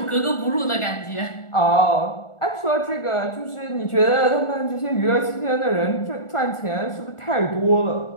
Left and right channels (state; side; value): late; right; 1.4 ms